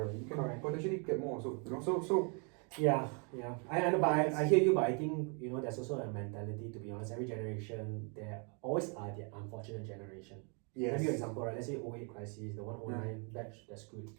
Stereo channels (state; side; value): quieter; left; 36.8 dB